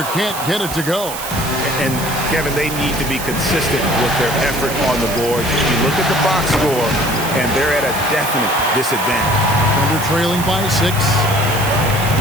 can't get it to go. And, Kevin, they need to be consistent with their effort on the boards. You look at the box score, and they're at a definite disadvantage. Thunder trailing by 6.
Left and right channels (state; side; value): noise; right; hiss, 9 dB below the sound